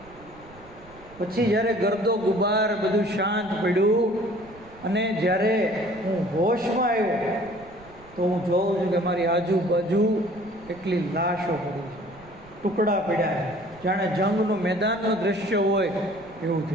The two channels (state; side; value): noise; right; rumble, 23 dB below the sound